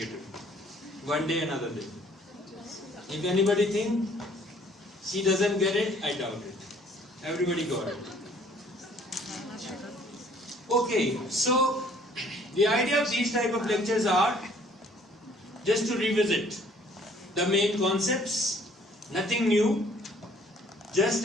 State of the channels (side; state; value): both; normal; correlation 0.58